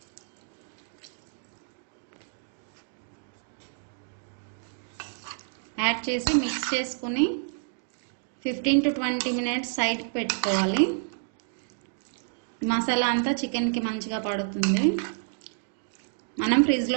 add చేసి మిక్స్ చేసుకుని 15 to 20 మినిట్స్ సైడ్కి పెట్టుకోవాలి. మసాలా అంతా చికెన్కి మంచిగా పడుతుంది. మనం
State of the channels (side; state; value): left; silent; digital silence